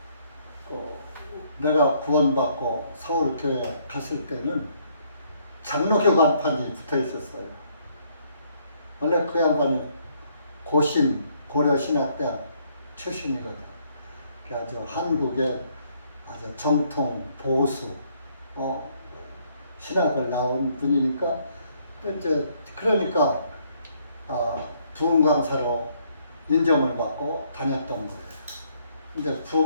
내가 구원받고 서울교회 갔을 때는 장로교 간판이 붙어 있었어요. 원래 그 양반이 고려신학대학 출신이거든. 아주 한국의 아주 정통 보수 신학을 나온 분이니까 이제 그러니까 부흥 강사로 인정을 받고 다녔던 거예요. 이제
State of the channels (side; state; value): both; inverted; correlation -0.68